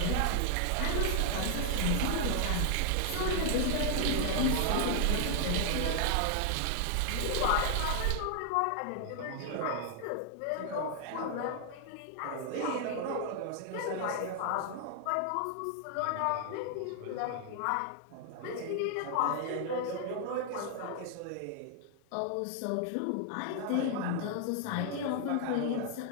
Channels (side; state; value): both; different; correlation 0.00